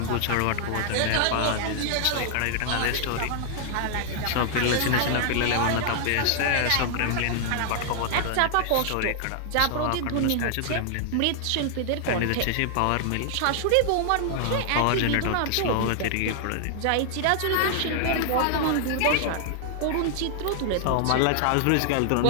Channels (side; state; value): both; different; correlation -0.01